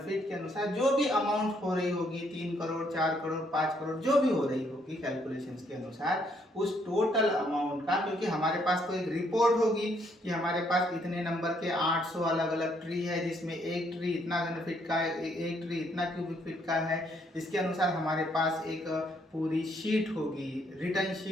फीट के अनुसार जो भी अमाउंट हो रही होगी, 3 करोड़ 4 करोड़ 5 करोड़ जो भी हो रही होगी कैलकुलेशंस के अनुसार, उस टोटल अमाउंट का, क्योंकि हमारे पास तो एक रिपोर्ट होगी कि हमारे पास इतने नंबर के 800 अलग अलग ट्री है जिसमें एक ट्री इतना घन फीट का है, एक ट्री इतना क्यूबिक फीट का है। इसके अनुसार हमारे पास एक पूरी शीट होगी, रिटर्न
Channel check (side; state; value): both; normal; correlation 0.70